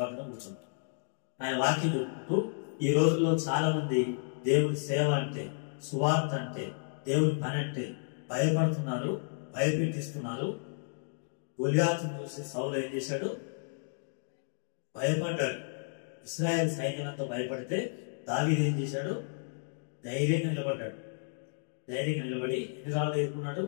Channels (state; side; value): silent; right; digital silence